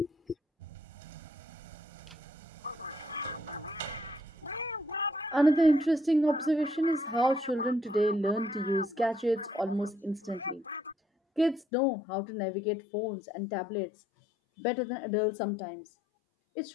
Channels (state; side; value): drops out; right; at 11.7 s